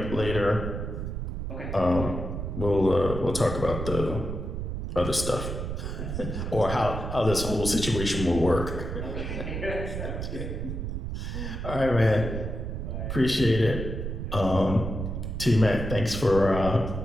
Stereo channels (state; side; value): noise; right; rumble, 5 dB below the sound